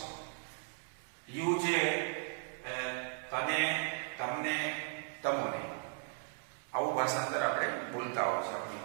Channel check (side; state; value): left; silent; 53 dB below the other